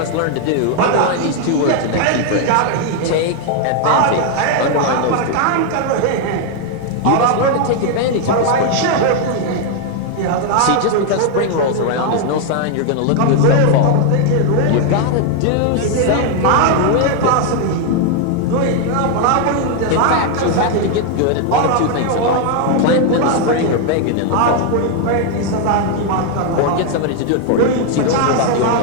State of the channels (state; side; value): different; both; correlation 0.00